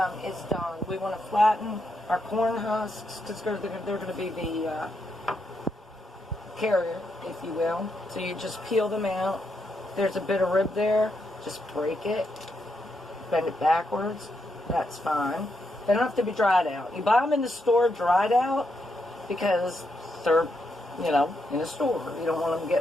Is done. We want to flatten our corn husks because they're going to be the carrier, if you will. So you just peel them out. There's a bit of rib there. Just break it, bend it backwards. That's fine. They don't have to be dried out. You buy them in the store dried out because they're, in the store. You don't want them to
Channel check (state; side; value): normal; both; correlation 0.81